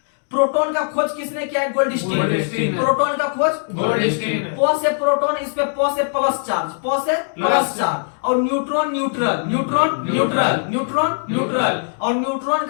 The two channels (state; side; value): silent; right; digital silence